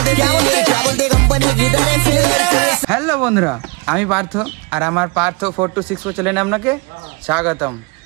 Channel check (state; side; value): quieter; left; 31.2 dB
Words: হ্যালো বন্ধুরা, আমি পার্থ আর আমার পার্থ 426 চ্যানেলে আপনাকে স্বাগতম।